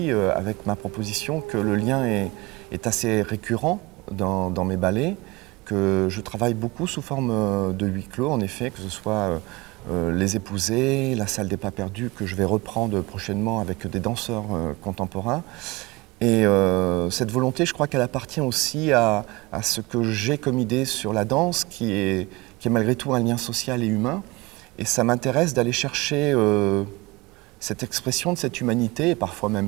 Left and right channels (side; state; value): left; quieter; 23.3 dB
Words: avec ma proposition, que le lien est assez récurrent dans mes ballets, que je travaille beaucoup sous forme de huis clos, en effet, que ce soit Les Épousés, La Salle des Pas Perdus, que je vais reprendre prochainement avec des danseurs contemporains. Et cette volonté, je crois qu'elle appartient aussi à ce que j'ai comme idée sur la danse, qui est malgré tout un lien social et humain. Et ça m'intéresse d'aller chercher cette expression de cette humanité, et parfois même